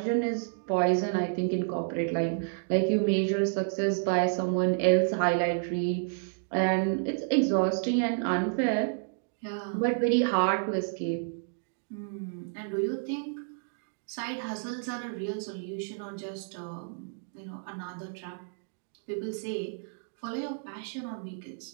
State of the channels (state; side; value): silent; left; digital silence